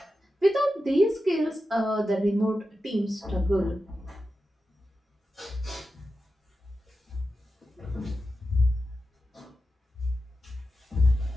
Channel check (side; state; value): both; normal; correlation 0.91